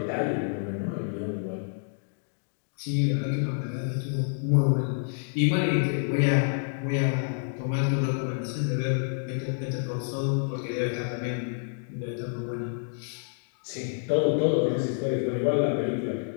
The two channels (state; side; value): silent; right; digital silence